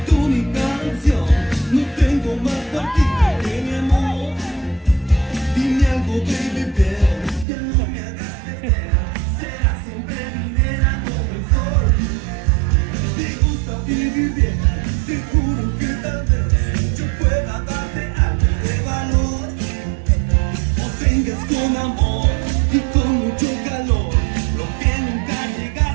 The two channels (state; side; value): drops out; left; at 7.5 s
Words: tú mi canción, no tengo más partido que mi amor. Dime algo, baby, Belle, ya no me hagas perder. Serás siempre mi nena como el sol. Te gusta vivir bien, te juro que tal vez yo pueda darte algo de valor. O tengas con amor y con mucho calor lo que nunca